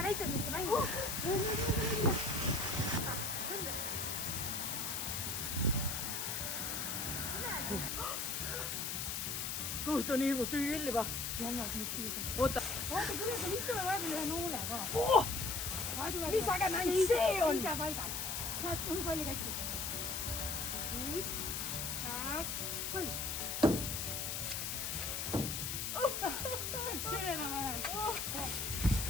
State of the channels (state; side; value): noise; left; hiss, 2 dB below the sound